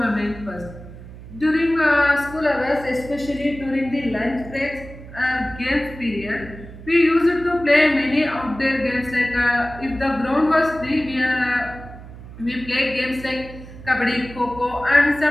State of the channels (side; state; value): right; noise; hum, 15 dB below the sound